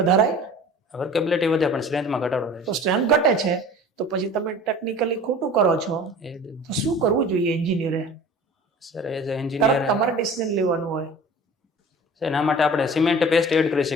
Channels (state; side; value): normal; both; correlation 0.42